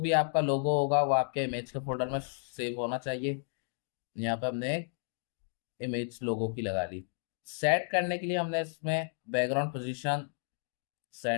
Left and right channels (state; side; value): silent; right; digital silence